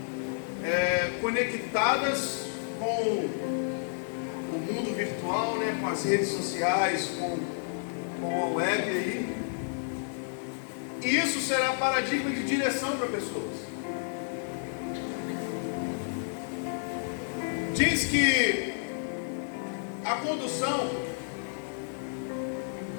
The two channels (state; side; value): silent; right; 57 dB below the other